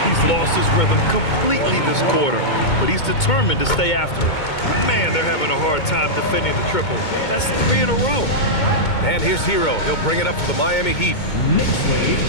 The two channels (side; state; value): right; late; 2.2 ms